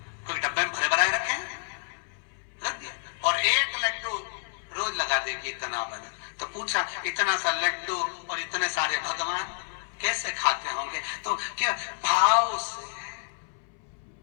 कोई डब्बे में भरे भराए रखे रख दिया, और 1 लड्डू रोज लगा देगी, इतना बना। तो पूछा, इतना सा लड्डू और इतने सारे भगवान कैसे खाते होंगे? तो क्या भाव से।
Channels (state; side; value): silent; right; 59 dB below the other